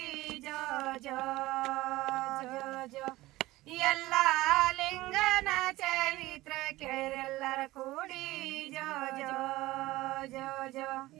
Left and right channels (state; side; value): quieter; left; 18.2 dB